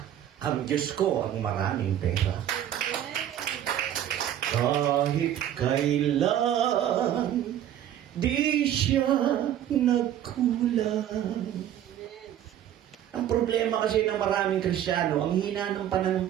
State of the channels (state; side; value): quieter; left; 11.1 dB